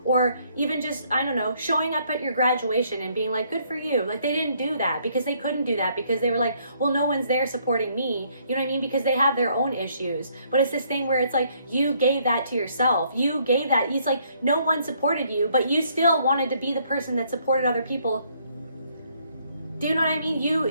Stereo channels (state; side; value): inverted; both; correlation -0.67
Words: or even just, I don't know, showing up at your graduation and being like, good for you. Like they didn't do that because they couldn't do that because they were like, well, no one's there supporting me. You know what I mean? Because they have their own issues. But it's this thing where it's like, you gave that to yourself. You gave that. It's like no one supported you, but you still wanted to be the person that supported other people. Do you know what I